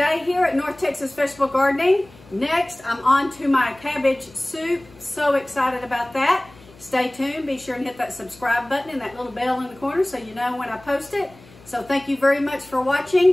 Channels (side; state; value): left; noise; hum, 24 dB below the sound